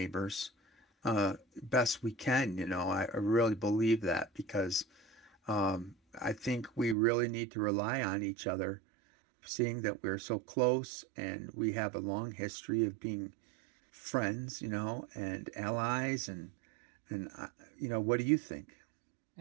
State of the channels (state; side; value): drops out; left; at 7.0 s